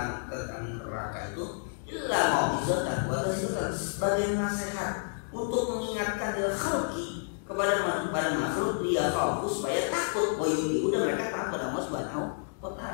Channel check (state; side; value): silent; right; digital silence